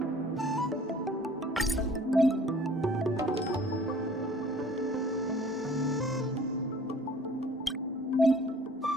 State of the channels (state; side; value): normal; both; correlation 0.51